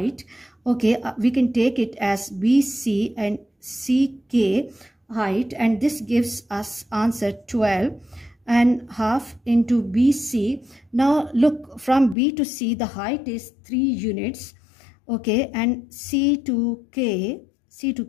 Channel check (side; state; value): right; drops out; at 12.2 s